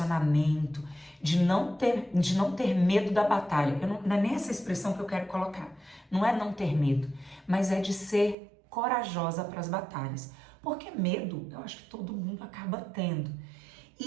de não ter medo da batalha. Não é nem essa expressão que eu quero colocar. Não é não ter medo, mas é de ser corajosa para as batalhas. Porque medo, eu acho que todo mundo acaba tendo.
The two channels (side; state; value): left; drops out; at 8.3 s